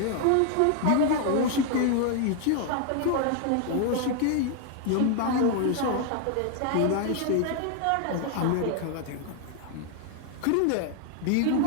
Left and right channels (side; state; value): both; different; correlation 0.00